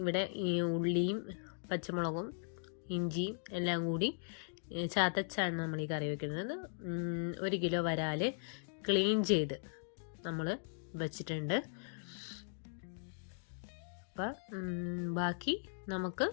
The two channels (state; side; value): silent; right; digital silence